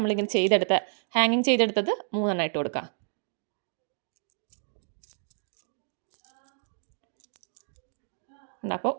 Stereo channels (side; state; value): left; silent; digital silence